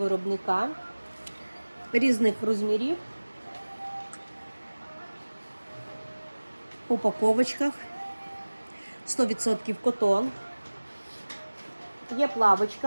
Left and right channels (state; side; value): inverted; both; correlation -1.00